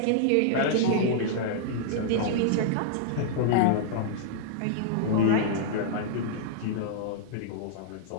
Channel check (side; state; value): both; different; correlation -0.02